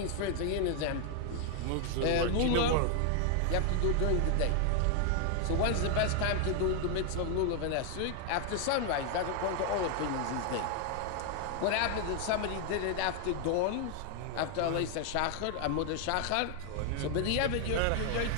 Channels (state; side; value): different; both; correlation 0.00